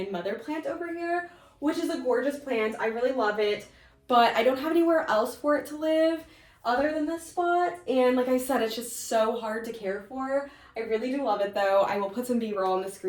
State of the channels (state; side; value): identical; both; correlation 1.00